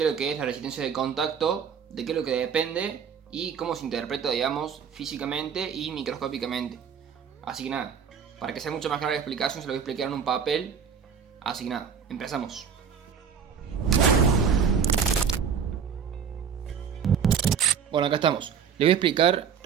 es lo que es la resistencia de contacto, de qué es lo que depende y cómo se interpreta, digamos, físicamente y microscópicamente. Así que nada, para que sea mucho más clara la explicación, se lo voy a explicar en un papel. Así que nada, empezamos. Bueno, acá estamos. Les voy a explicar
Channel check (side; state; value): left; quieter; 7.1 dB